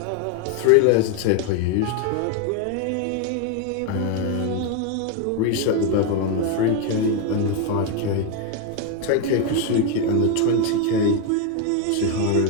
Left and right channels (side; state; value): both; different; correlation 0.02